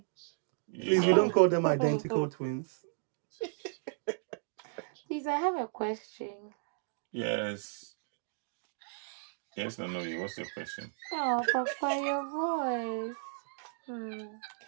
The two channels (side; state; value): left; silent; digital silence